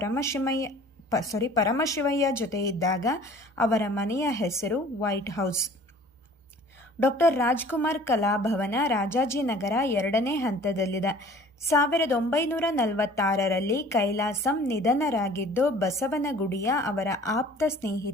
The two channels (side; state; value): both; normal; correlation 0.49